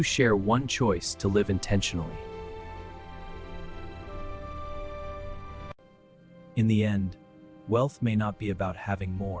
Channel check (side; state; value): both; identical; correlation 1.00